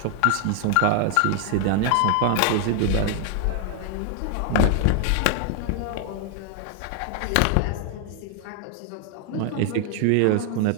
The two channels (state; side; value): different; both; correlation 0.00